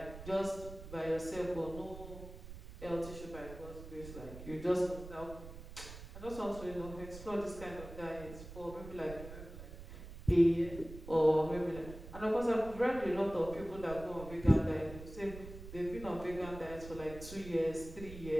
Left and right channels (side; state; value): right; noise; rumble, 13 dB below the sound